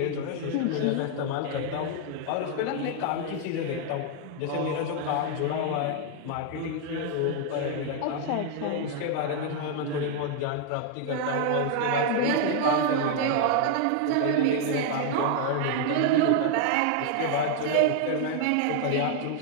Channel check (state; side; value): different; both; correlation 0.00